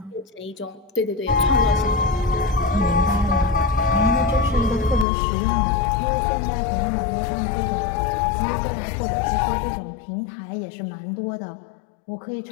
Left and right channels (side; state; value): right; drops out; at 5.1 s